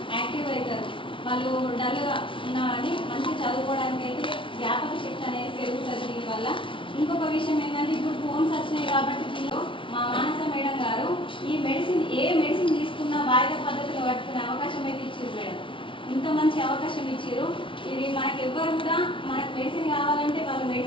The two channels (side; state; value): right; late; 0.25 ms